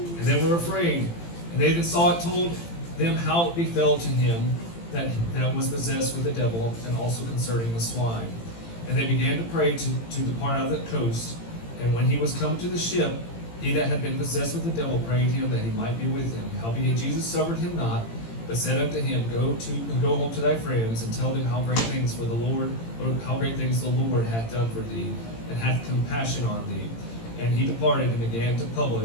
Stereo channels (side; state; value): right; late; 18 ms